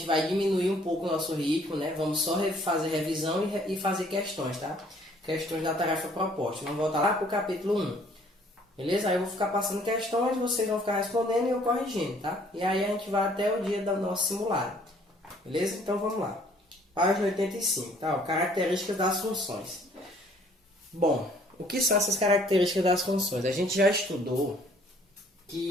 vai diminuir um pouco o nosso ritmo, né? Vamos só fazer revisão e fazer questões, tá? Questões da tarefa proposta. Vamos voltar lá para o capítulo 1. Beleza? Aí eu vou ficar passando questões, vocês vão ficar respondendo e eu corrigindo, tá? E aí a gente vai até o dia do nosso simulado. Beleza? Então vamos lá. Página 85, tá? Características das funções. Bom, o que são essas características das funções? A gente já estudou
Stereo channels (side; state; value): both; normal; correlation 0.59